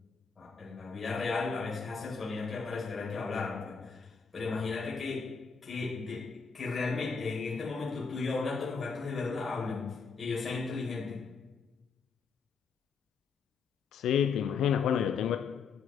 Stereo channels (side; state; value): right; quieter; 5.5 dB